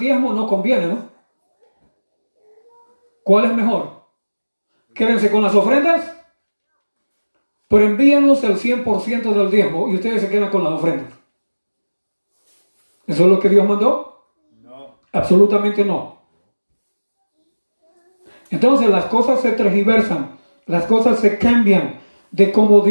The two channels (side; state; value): both; inverted; correlation -1.00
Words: no conviene, ¿no? ¿Cuál es mejor? Quédense con las ofrendas, pero envíenos el 100% del diezmo y ustedes se quedan con las ofrendas. ¿Eso es lo que Dios mandó? No. Absolutamente no. Entonces las cosas se tergiversan, las cosas se cambian de como